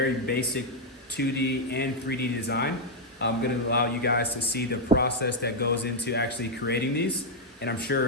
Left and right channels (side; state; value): both; normal; correlation -0.01